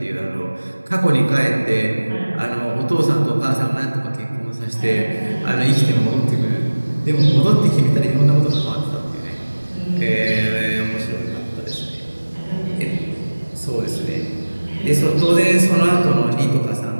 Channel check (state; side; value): inverted; both; correlation -1.00